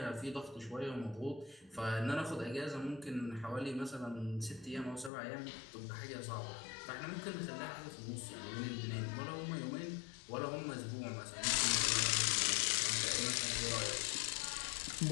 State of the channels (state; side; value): drops out; right; at 5.1 s